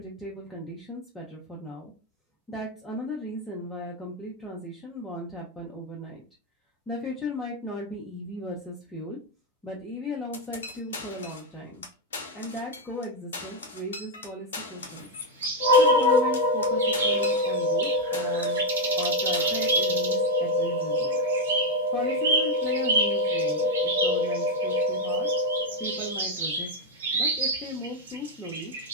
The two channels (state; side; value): normal; both; correlation 0.02